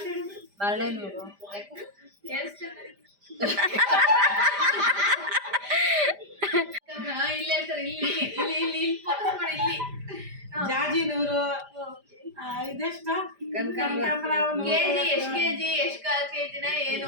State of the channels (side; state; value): left; late; 5.0 ms